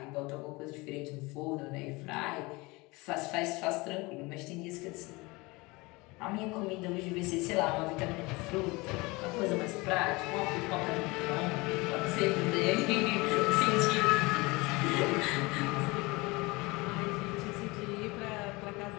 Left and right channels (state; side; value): quieter; right; 24.1 dB